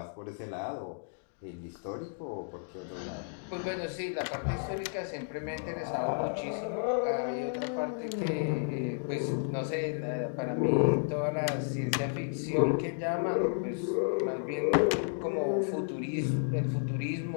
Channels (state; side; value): silent; right; digital silence